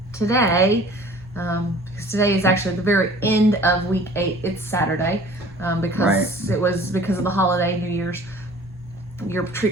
today, because today is actually the very end of week 8. It's Saturday, because it was because of the holiday, New Year's. Your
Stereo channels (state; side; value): normal; both; correlation 0.49